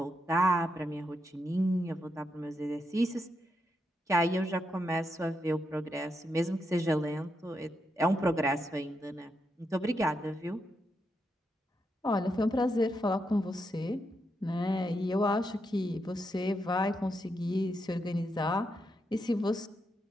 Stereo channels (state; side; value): normal; both; correlation 0.82